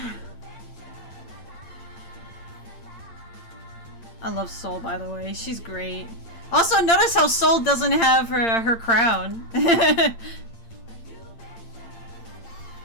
I love Soul, by the way. She's great. Also, notice how Soul doesn't have her crown. Oh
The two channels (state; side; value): late; right; 8.8 ms